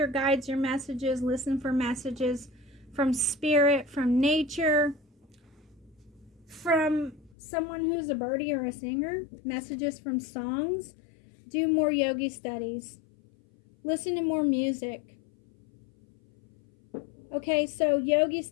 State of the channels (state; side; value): drops out; right; at 7.4 s